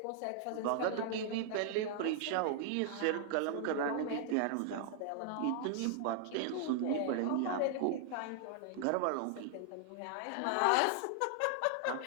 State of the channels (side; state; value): both; different; correlation 0.00